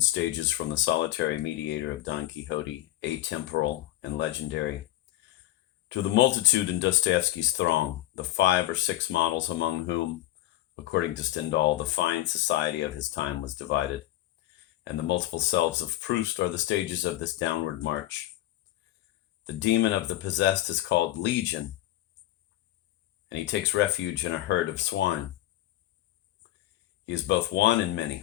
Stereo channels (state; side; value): quieter; right; 15.1 dB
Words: stages from the solitary mediator of Don Quixote, atemporal and legendary, to the multitude in Dostoevsky's throng, the 5 or 6 models among whom, according to Stendhal, the fine society of his time was divided, and the multiple selves of Proust are the stages of this downward march. The demon of the possessed is called Legion, and he takes refuge in a herd of swine. He is both one and